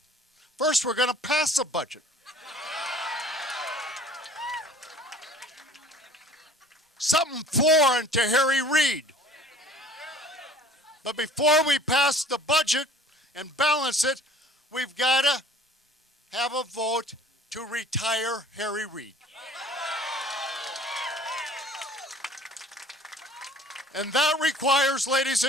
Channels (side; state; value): both; normal; correlation 0.50